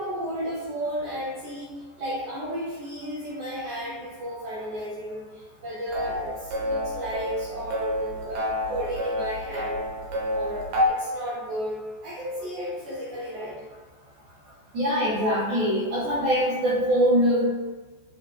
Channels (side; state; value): left; late; 14 ms